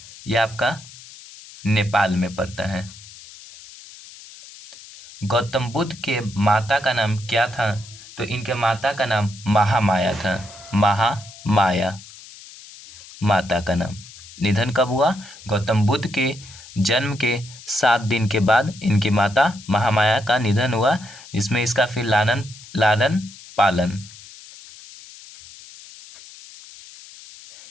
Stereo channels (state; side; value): noise; left; hiss, 18 dB below the sound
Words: यह आपका नेपाल में पड़ता है। गौतम बुद्ध के माता का नाम क्या था? तो इनके माता का नाम महामाया था। महामाया माता का नाम। निधन कब हुआ? गौतम बुद्ध के जन्म के 7 दिन के बाद इनकी माता महामाया का निधन हुआ, जिसमें इसका फिर लालन पालन